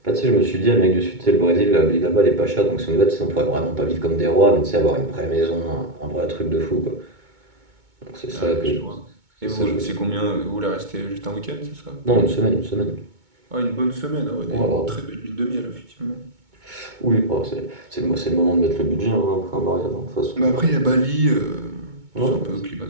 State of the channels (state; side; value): late; left; 2.2 ms